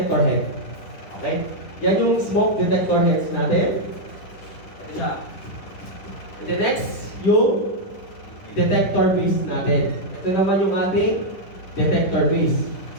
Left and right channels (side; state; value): right; late; 10 ms